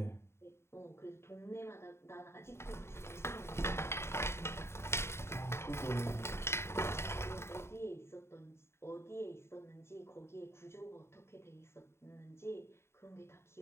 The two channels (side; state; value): right; late; 0.12 ms